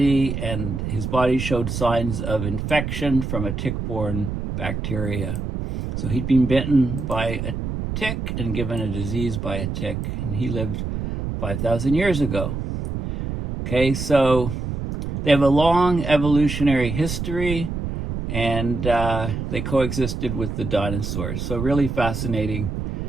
and his body showed signs of infection from a tick-borne bacteria. So he'd been bitten by a tick and given a disease by a tick, and he lived 5,000 years ago. Okay, so they have a long evolutionary history, and they coexisted with the dinosaurs. So really fascinating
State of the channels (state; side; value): noise; right; rumble, 4 dB below the sound